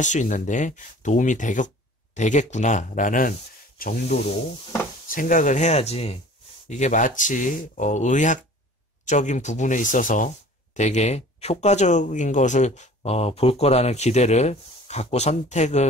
수 있는데 도움이 되겠구나라는 정도로 생각을 해야지 이게 마치 의학적인 부분에 있어서 되게 효과적인 것을 볼 거라는 기대를 갖고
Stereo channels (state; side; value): normal; both; correlation 0.46